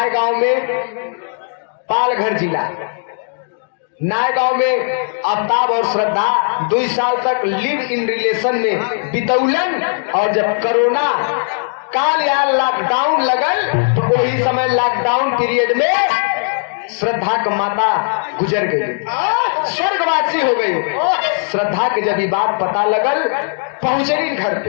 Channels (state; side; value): silent; right; digital silence